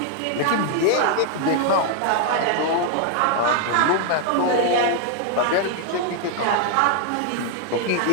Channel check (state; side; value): different; both; correlation 0.00